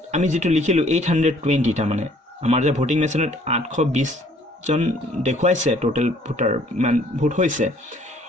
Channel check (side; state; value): both; normal; correlation 0.59